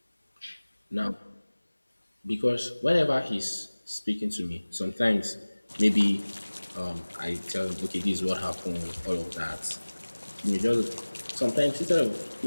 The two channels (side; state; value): both; inverted; correlation -1.00